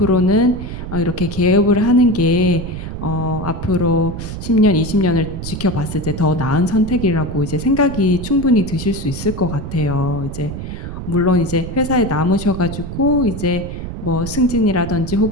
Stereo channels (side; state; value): right; noise; rumble, 8 dB below the sound